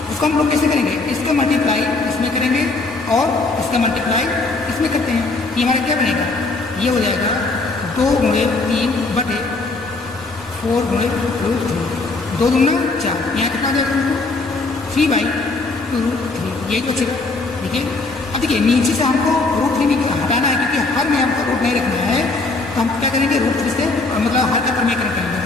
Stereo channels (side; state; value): right; quieter; 3.5 dB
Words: इसको हम लोग कैसे करेंगे, इसका मल्टीप्लाई इसमें करेंगे और इसका मल्टीप्लाई इसमें करते हैं। ये हमारा क्या बनेगा, ये हो जाएगा 2 × 3 बटे 4 × √3, 2 दूना 4। यहाँ कितना हो जाएगा दोस्तों, 3/√3, यही तो बचेगा। देखिए अब देखिए नीचे से हमको √3 हटाना है क्योंकि हर में हमको रूट नहीं रखना है, तो हम क्या करेंगे √3 से मतलब हर का प्रमेयकरण करेंगे।